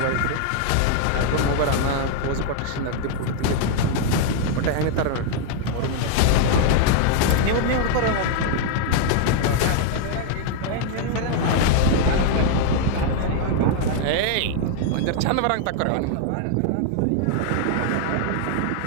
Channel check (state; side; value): different; both; correlation 0.00